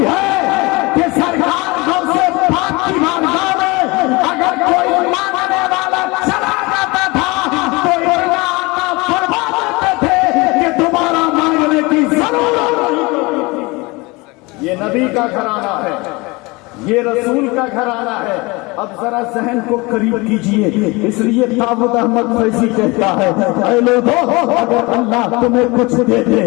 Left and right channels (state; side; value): quieter; right; 24.7 dB